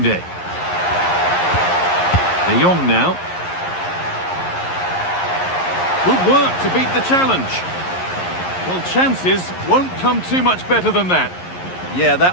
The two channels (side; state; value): right; late; 11 ms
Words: De Jong now. Good work to beat the challenge. Well, chances won't come too much better than that. Yeah,